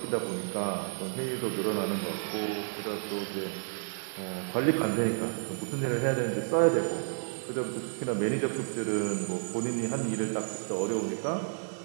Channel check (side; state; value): left; silent; digital silence